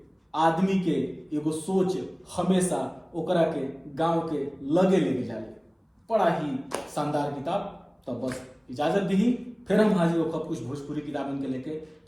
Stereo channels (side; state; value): both; identical; correlation 1.00